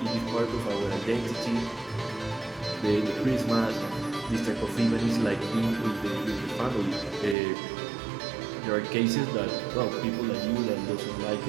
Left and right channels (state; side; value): drops out; left; at 7.4 s